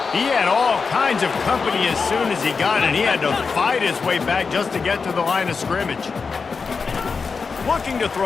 He had all kinds of company as soon as he got it. He had to fight his way back just to get to the line of scrimmage. Looking to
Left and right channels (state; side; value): quieter; right; 5.0 dB